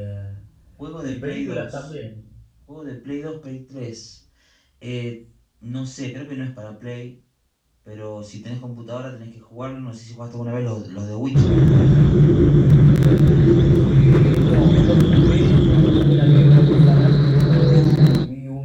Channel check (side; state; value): both; identical; correlation 1.00